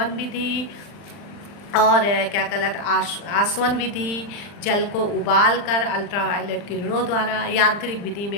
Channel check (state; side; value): late; right; 40 ms